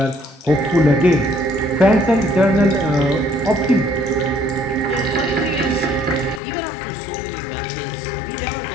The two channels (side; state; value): right; drops out; at 6.4 s